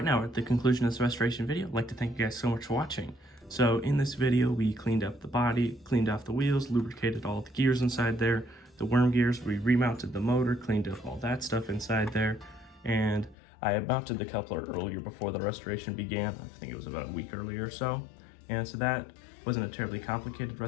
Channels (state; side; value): drops out; right; at 13.4 s